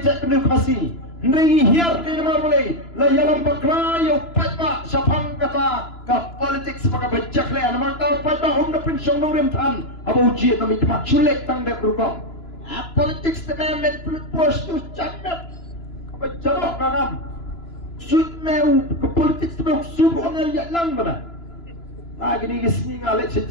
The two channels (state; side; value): late; right; 2.9 ms